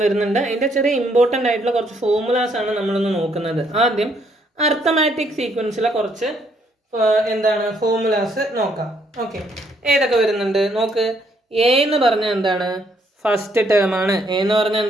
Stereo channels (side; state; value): both; normal; correlation 0.70